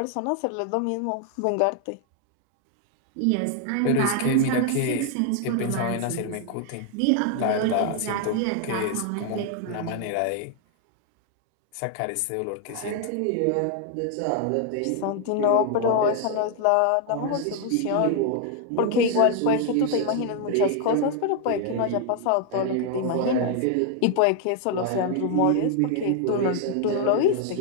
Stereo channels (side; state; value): both; different; correlation 0.00